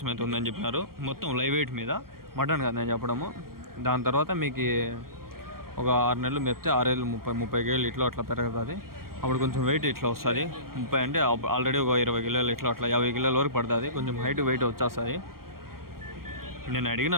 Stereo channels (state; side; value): late; left; 0.93 ms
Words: అయితే ఉందని చెప్పినారు. మొత్తం లైవ్ వెయిట్ మీద మటన్ కదా నేను చెప్పడము. దాని తర్వాత మీకు ఒక 6 నెలలు మెప్తే 6 ఏళ్ళు 30 కేళ్ళు అట్లా పెరుగుతుంది. అప్పుడు కొంచెం వెయిట్ ఇట్లా వస్తుంది. 30 అంటే ఆల్రెడీ ఒక 20 కిలోలు అట్లా 50 కిలోల వరకు పడుతుంది. కొంచెం హైట్ వెయిట్ వచ్చేస్తుంది. నేను అడిగిన